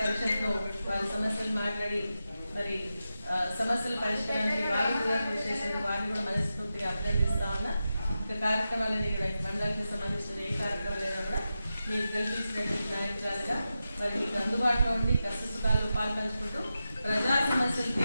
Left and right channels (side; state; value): both; inverted; correlation -0.91